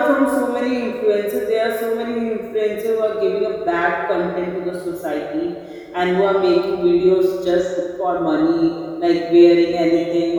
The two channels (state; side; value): identical; both; correlation 1.00